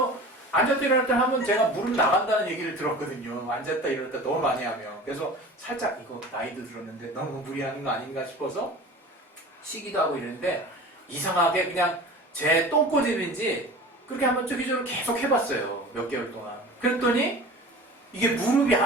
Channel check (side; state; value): both; normal; correlation 0.38